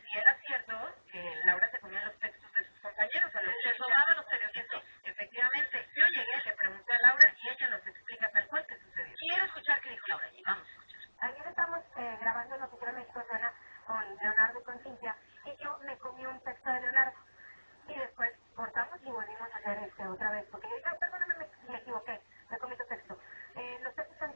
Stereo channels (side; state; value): both; inverted; correlation -1.00